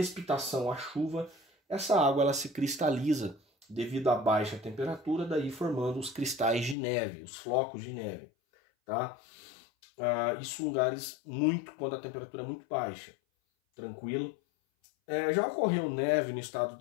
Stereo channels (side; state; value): right; drops out; at 6.8 s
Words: a chuva, essa água ela se cristaliza devido à baixa temperatura, daí formando os cristais de neve, os flocos de neve, tá? Isso em lugares quando a temperatura é muito baixa, tranquilo. Já ocorreu neve no estado